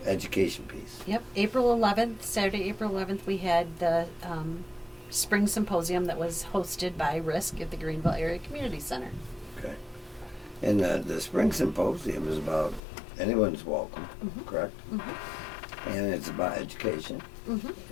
education piece. Yep, April 11th, Saturday, April 11th, we had the Spring Symposium that was hosted by RISC at the Greenville Area Community Center. Okay. And the Spring Symposium is about anyone's welcome, Mhm. correct? Mm-hmm. And it's about education Mm-hmm.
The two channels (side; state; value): right; drops out; at 12.8 s